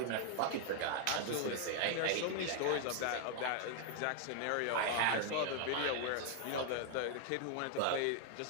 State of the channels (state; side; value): different; both; correlation 0.00